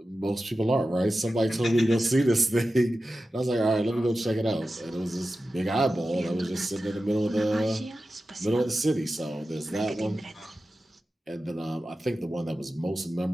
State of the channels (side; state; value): both; normal; correlation 0.93